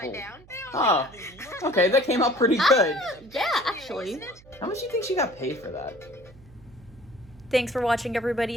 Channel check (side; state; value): right; noise; hum, 24 dB below the sound